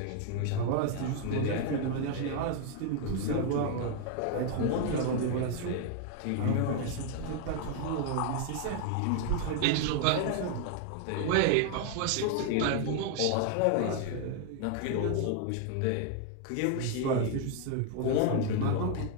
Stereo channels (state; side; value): different; both; correlation 0.00